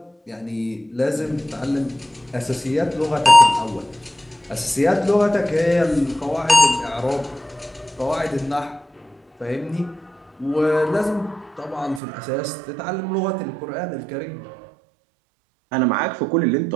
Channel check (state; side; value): drops out; left; at 12.0 s